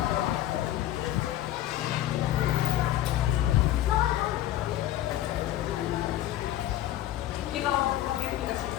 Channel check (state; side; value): quieter; right; 13.5 dB